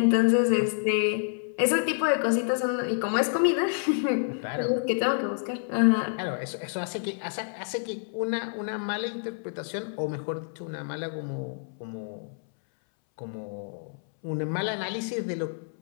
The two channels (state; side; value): silent; right; 59 dB below the other